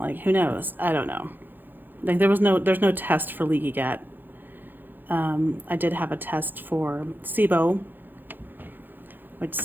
who knows? I don't know. Like, there's no test for leaky gut. I did have a test for SIBO, which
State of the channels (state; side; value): late; left; 0.091 ms